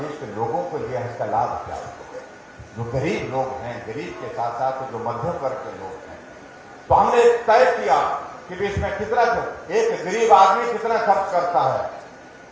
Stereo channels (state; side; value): identical; both; correlation 1.00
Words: के लोगों को लिए इसका लाभ क्या होगा। जो गरीब लोग हैं, गरीब के साथ साथ जो मध्यम वर्ग के लोग हैं, तो हमने तय किया कि इसमें कितना, एक गरीब आदमी कितना खर्च करता है।